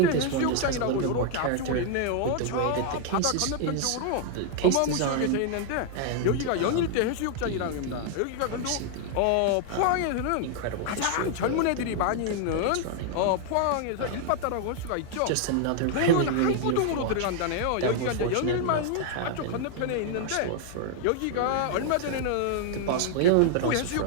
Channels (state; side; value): different; both; correlation 0.00